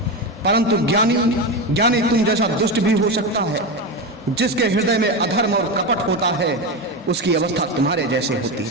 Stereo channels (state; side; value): normal; both; correlation 0.17